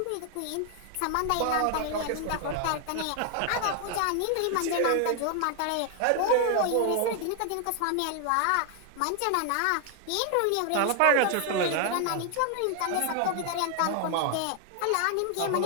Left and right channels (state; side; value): different; both; correlation 0.00